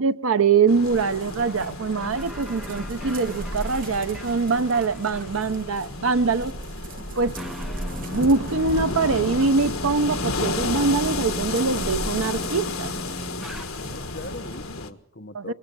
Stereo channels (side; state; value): left; quieter; 3.1 dB